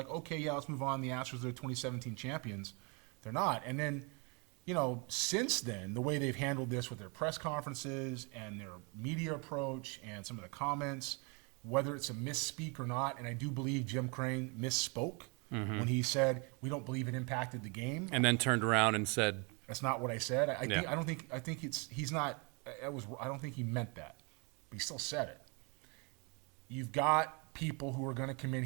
okay, yeah, let's move on. The Astros, they're 2017 champions. They're not. And then, since then, the way they've handled this with their press conferences and their media approach and some of the comments, whether it's a misspeak or not, and I do believe Jim Crane misspoke when he said, we don't believe it impacted the game. And then turned around and said, that's not what I said. I don't think he meant that, but he still said it. You've got people who are going to come in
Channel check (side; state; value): left; quieter; 32.7 dB